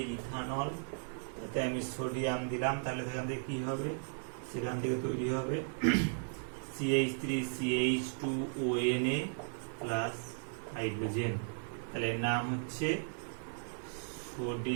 ইথানল, তাতে আমি সোডিয়াম দিলাম, তাহলে সেখান থেকে কি হবে, সেখান থেকে তৈরি হবে CH3CH2ONA প্লাস হাইড্রোজেন, তাহলে এর নাম হচ্ছে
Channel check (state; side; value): silent; left; digital silence